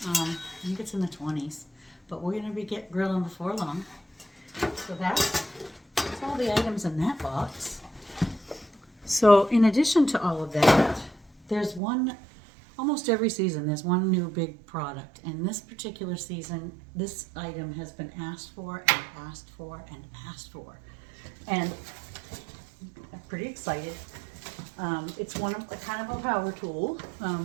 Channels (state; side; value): drops out; left; at 11.8 s